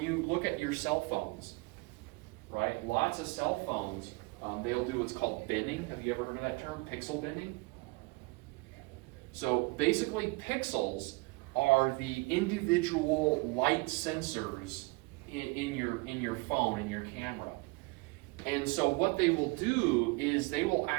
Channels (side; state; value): left; quieter; 26.0 dB